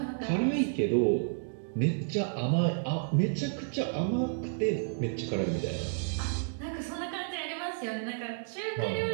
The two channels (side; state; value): left; silent; digital silence